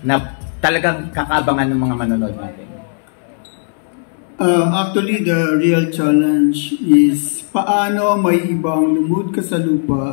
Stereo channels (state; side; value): silent; right; 66 dB below the other